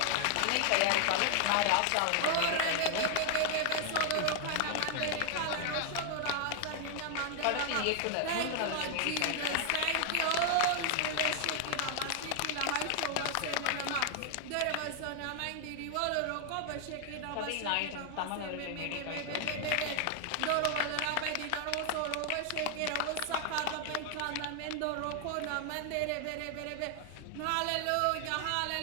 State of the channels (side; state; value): both; different; correlation 0.00